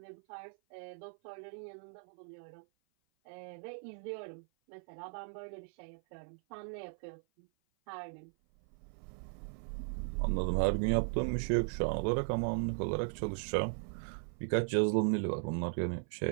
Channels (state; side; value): silent; left; 53 dB below the other